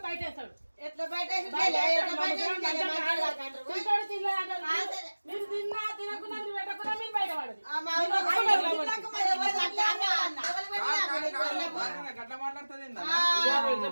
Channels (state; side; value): inverted; both; correlation -1.00